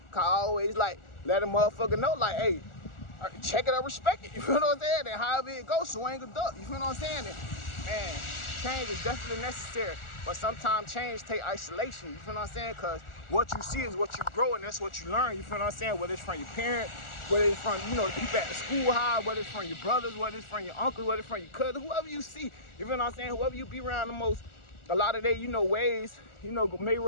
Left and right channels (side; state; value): right; late; 1.4 ms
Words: Cause I always, like, let a motherfucker know, like, hey, check it or respect it, you feel what I'm saying? And however it goes, swing a duck, you feel what I'm saying? And, man, change is definitely necessary. But sometimes change take isolation, you feel what I'm saying? Because what you see is what you grow, and that's what you learn, you feel what I'm saying? Whether it's from your parents, whether it's from, you know, the people at the school high, whether it's from your brothers, whether it's from your uncle, whether it's from your cousin, whoever you see, you feel what I'm saying? Whoever you be around the most, a lot of their, you know, ways, you know, may